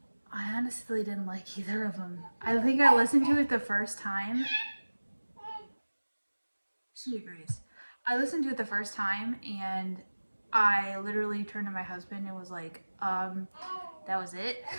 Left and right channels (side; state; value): both; inverted; correlation -1.00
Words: honestly didn't like either of them. I think I listened to it the first time. She agrees. I listened to it the first time, and I literally turned to my husband and was like, that was it.